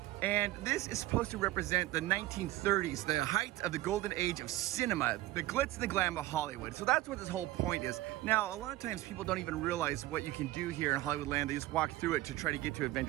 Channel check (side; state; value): left; quieter; 16.5 dB